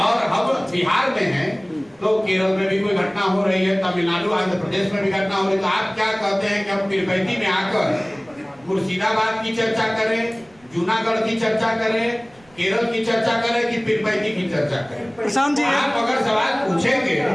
हम बिहार में हैं तो केरल में भी कोई घटना हो रही है, तमिलनाडु, आंध्र प्रदेश में भी घटना हो रही है, तो आप क्या कहते हैं कि हम पीरपैंती में आकर मुर्शिदाबाद की चर्चा करें, जूनागढ़ की चर्चा करें, केरल की चर्चा करें कि पीरपैंती की चर्चा करें? प्रशांत जी, आप अगर सवाल पूछेंगे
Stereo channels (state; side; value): noise; right; rumble, 30 dB below the sound